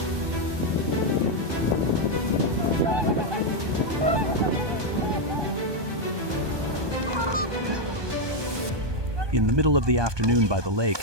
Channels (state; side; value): late; left; 1.2 ms